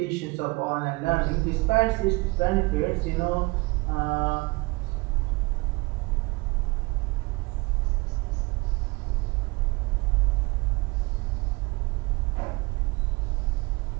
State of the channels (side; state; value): left; quieter; 25.0 dB